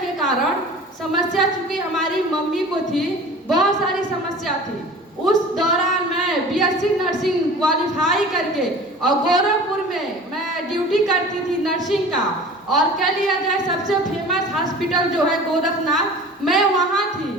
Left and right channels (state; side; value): normal; both; correlation 0.41